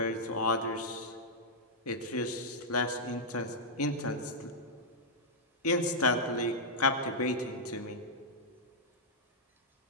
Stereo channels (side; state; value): both; normal; correlation -0.08